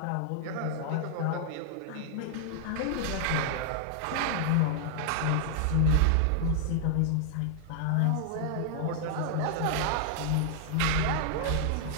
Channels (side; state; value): both; different; correlation -0.01